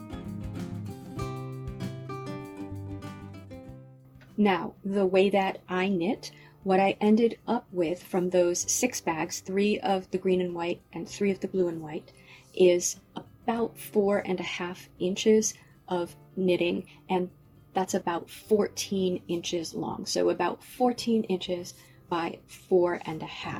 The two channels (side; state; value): both; identical; correlation 1.00